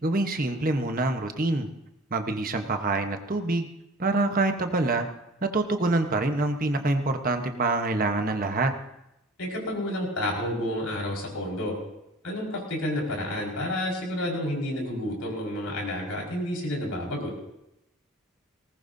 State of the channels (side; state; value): both; normal; correlation 0.44